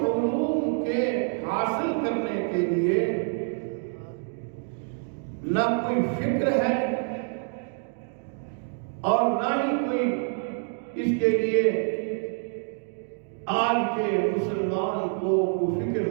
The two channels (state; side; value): silent; left; 56 dB below the other